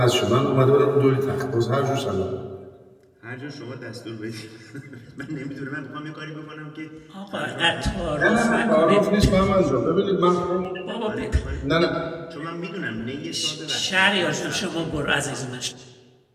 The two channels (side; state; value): both; identical; correlation 1.00